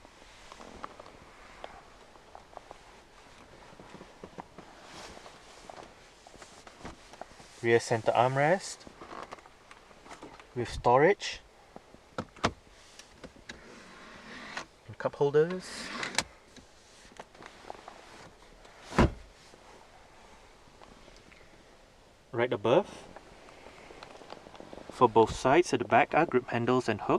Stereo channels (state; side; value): identical; both; correlation 1.00